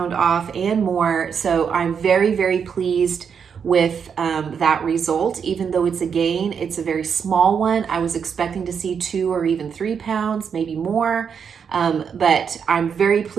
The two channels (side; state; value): left; quieter; 6.9 dB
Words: off and more. So I'm very, very pleased with that result. Even though it's a gain, it's a very small one. I was expecting to see 2 or even 3 pounds, maybe more. But I'm very